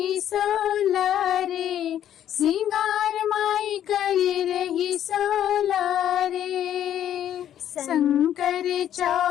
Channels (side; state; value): right; quieter; 10.7 dB